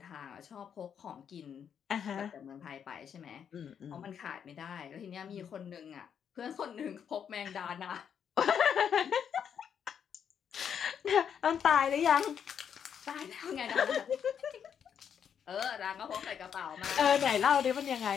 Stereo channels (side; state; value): right; quieter; 8.0 dB